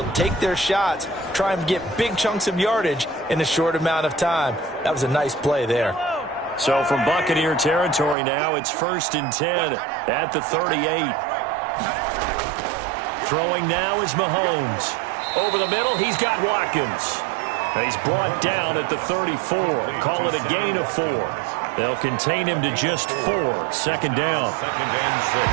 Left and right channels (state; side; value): drops out; left; at 8.2 s